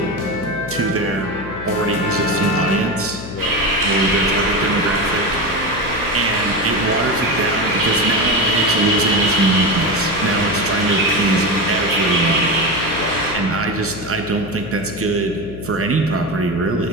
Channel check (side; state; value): left; noise; hum, 11 dB below the sound